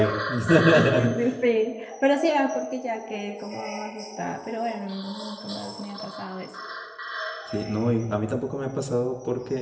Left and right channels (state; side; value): identical; both; correlation 1.00